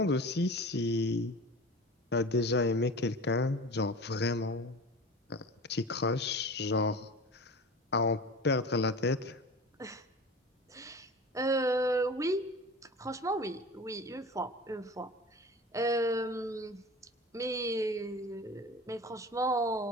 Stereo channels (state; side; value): normal; both; correlation 0.35